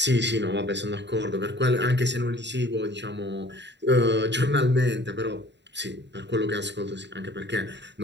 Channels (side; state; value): left; late; 0.51 ms